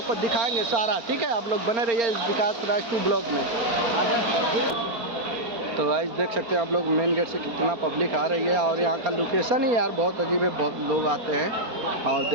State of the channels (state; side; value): late; left; 4.4 ms